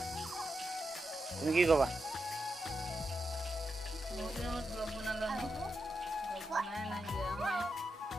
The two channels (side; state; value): both; normal; correlation 0.86